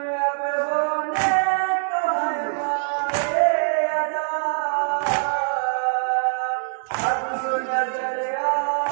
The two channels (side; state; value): left; silent; 62 dB below the other